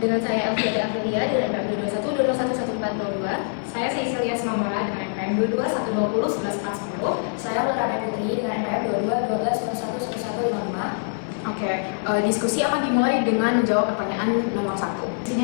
saya Elvira Aprilia dengan NPM 22120111402. Saya Cecilia Smamara dengan NPM 221201110. Saya Ulara Putri dengan NPM 2212111155. Oke, diskusi akan dimulai dengan menjawab pertanyaan nomor 1. Di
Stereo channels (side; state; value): right; silent; 62 dB below the other